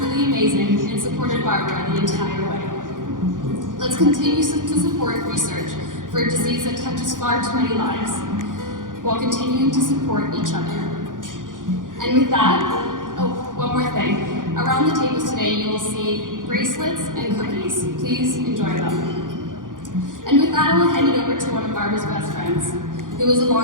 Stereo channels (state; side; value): late; left; 0.89 ms